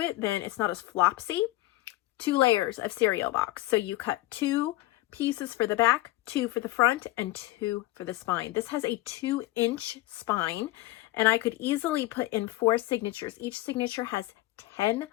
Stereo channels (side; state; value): right; quieter; 17.7 dB